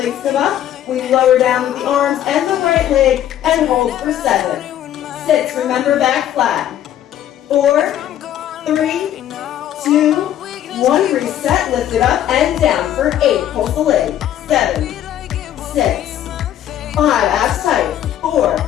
come up. We lower down with the arms and the right leg and hold for 7, 6. Remember, back flat. 4, 3, 2, 1. Reset, lift it up and down for 8. Pulse the leg. 7, 6, 5, abs tight. 4,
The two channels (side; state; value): right; quieter; 11.4 dB